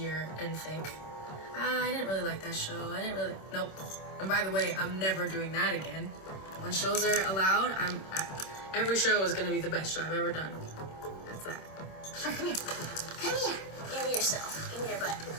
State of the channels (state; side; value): late; right; 26 ms